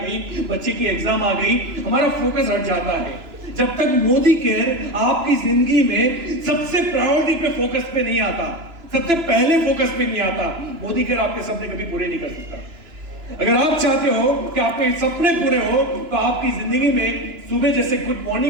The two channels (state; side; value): late; left; 3.0 ms